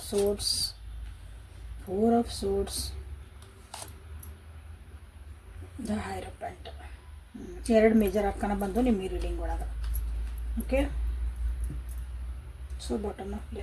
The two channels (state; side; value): identical; both; correlation 1.00